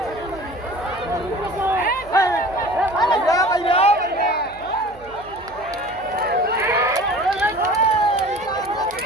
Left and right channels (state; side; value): noise; right; hum, 22 dB below the sound